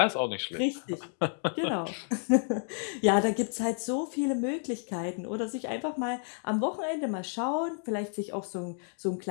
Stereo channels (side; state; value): right; silent; 57 dB below the other